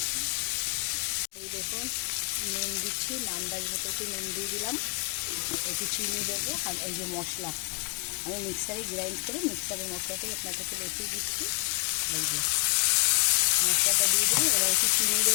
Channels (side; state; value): right; quieter; 31.5 dB